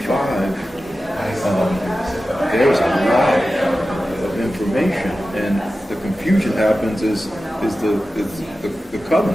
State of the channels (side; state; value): both; normal; correlation 0.94